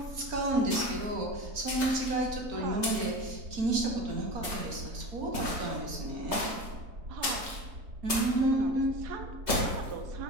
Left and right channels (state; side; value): late; left; 3.2 ms